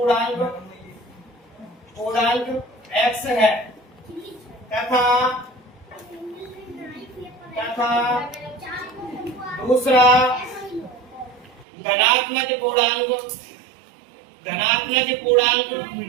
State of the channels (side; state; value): left; drops out; at 11.7 s